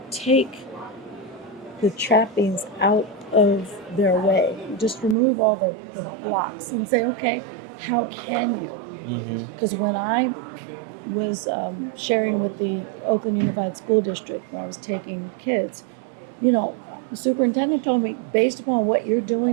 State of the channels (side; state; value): left; drops out; at 5.2 s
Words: take the trappings out of their way. You just remove all the blocks and say, okay, how can you? Because when I was sharing with the Oakland Unified School District when I was taking kids, you know, the superintendent told me, based upon what you're